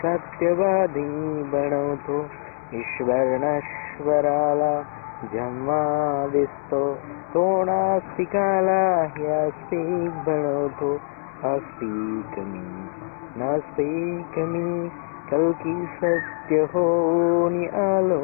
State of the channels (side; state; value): right; silent; 63 dB below the other